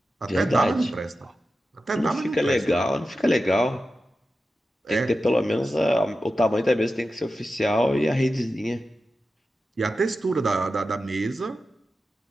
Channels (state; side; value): normal; both; correlation 0.92